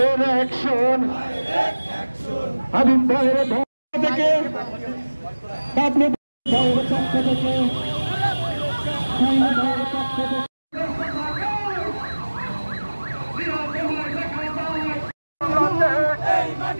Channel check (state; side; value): inverted; both; correlation -1.00